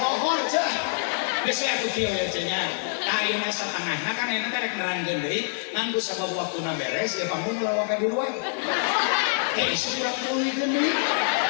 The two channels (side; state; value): right; silent; digital silence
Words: cah geus atuh kieu ya cenah ayeuna satengahna kan ayeuna teh rek nerangkeun deui ngan geus sabab waktuna beres ya panggung lawak di luar hei sudah tulikeun deui